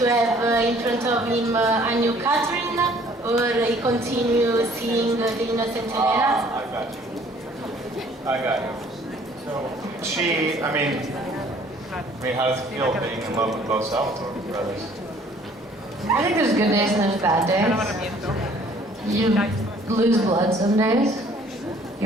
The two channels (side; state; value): both; normal; correlation 0.57